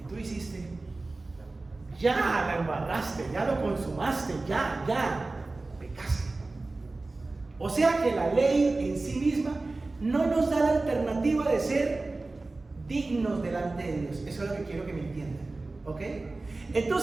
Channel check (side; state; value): left; quieter; 3.3 dB